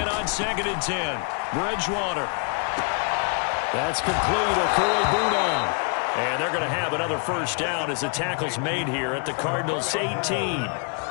on 2nd and 10. Bridgewater. That's complete. Okui-Bunan. And they're going to have another first down as the tackle's made here at the Cardinals' 18.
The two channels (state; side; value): quieter; right; 39.9 dB